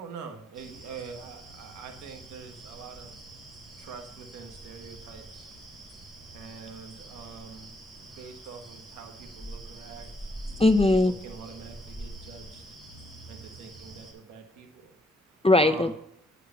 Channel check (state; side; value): normal; both; correlation 0.72